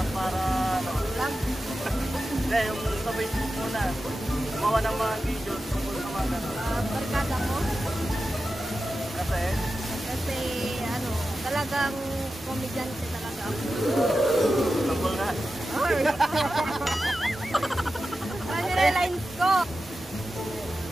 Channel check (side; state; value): both; normal; correlation 0.92